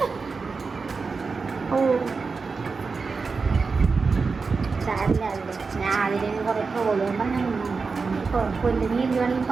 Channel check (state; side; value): quieter; left; 4.6 dB